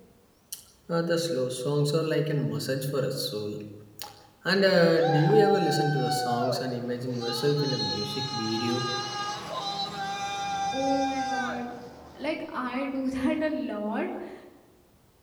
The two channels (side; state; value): both; identical; correlation 1.00